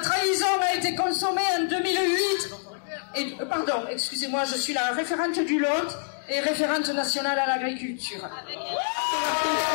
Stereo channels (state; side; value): silent; right; digital silence